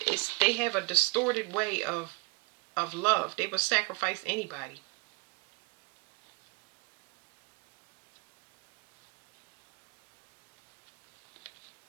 They have a distorted way of love. They will sacrifice anybody.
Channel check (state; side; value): quieter; left; 25.8 dB